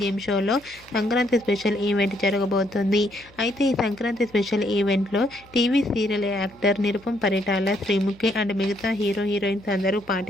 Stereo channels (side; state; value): left; noise; hum, 27 dB below the sound